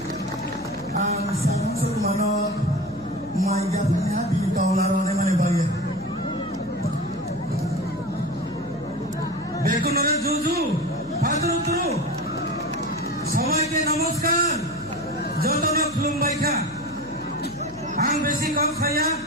সবাইকে নমস্কার যতন খুলুমবাইখা আং বেশি কম খাইয়া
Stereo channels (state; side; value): noise; left; hum, 20 dB below the sound